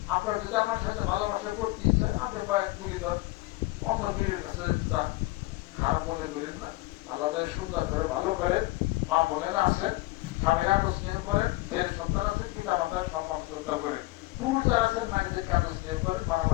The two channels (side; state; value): right; quieter; 21.1 dB